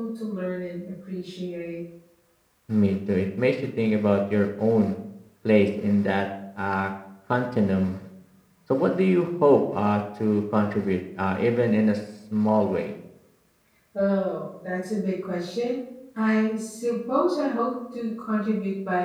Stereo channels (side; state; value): both; identical; correlation 1.00